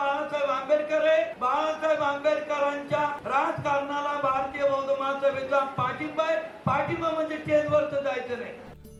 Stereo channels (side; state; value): both; identical; correlation 1.00